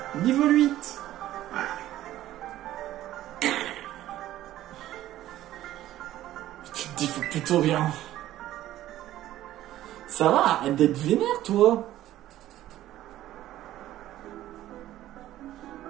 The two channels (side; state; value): left; quieter; 13.9 dB